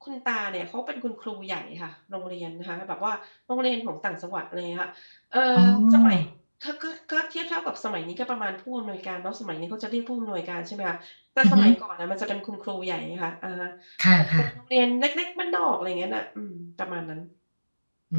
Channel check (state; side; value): inverted; both; correlation -1.00